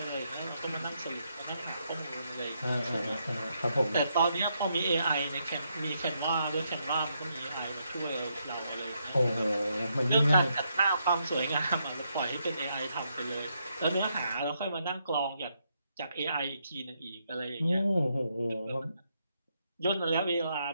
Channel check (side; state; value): both; inverted; correlation -0.78